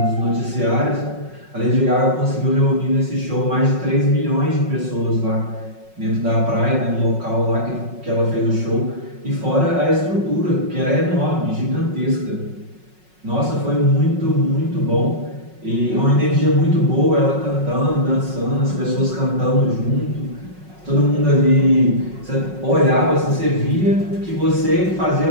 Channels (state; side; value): late; left; 5.4 ms